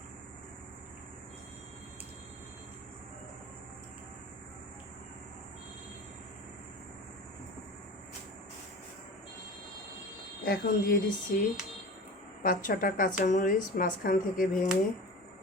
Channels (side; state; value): both; normal; correlation 0.35